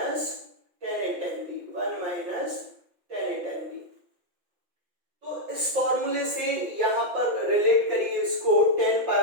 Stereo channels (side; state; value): left; late; 5.9 ms